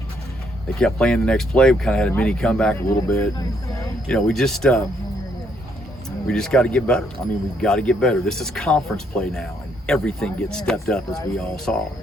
They kept playing the next play. We kind of had a mini comeback a little bit. And, we just got to get better. I mean, we've got to get better. This is conference play now, and everything gets stepped up, as we all saw.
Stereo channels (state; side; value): normal; both; correlation 0.71